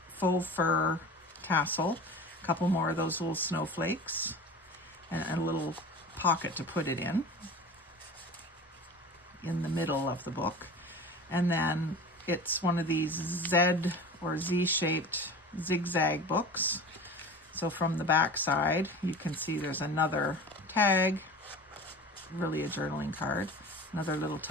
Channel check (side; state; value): both; normal; correlation 0.35